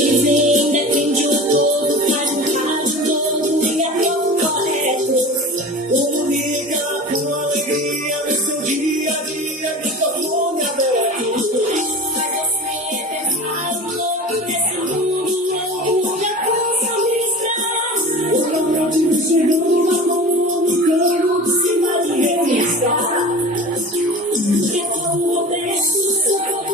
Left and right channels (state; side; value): normal; both; correlation 0.36